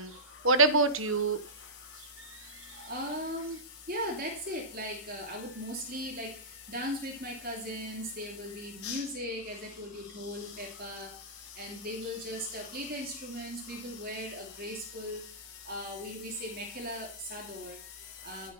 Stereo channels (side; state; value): both; normal; correlation -0.17